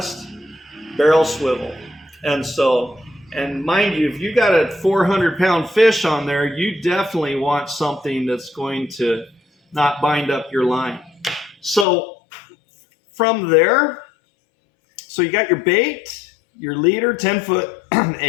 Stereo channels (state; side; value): drops out; right; at 11.9 s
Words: barrel swivel. And mind you, if you got a 400-pound fish on there, you definitely want something that's going to not bind up your line. So from there, so you got your bait, your leader, 10-foot,